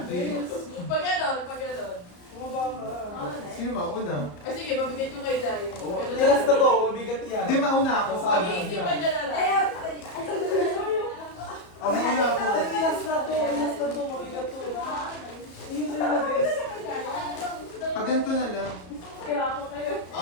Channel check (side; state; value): right; late; 34 ms